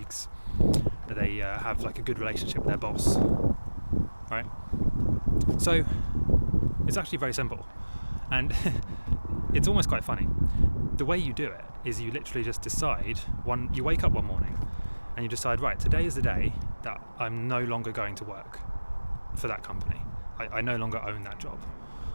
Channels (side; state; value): both; inverted; correlation -1.00